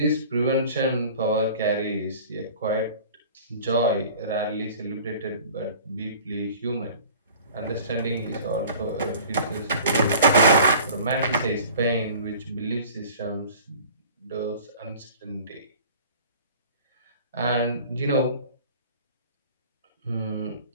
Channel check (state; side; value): inverted; both; correlation -0.45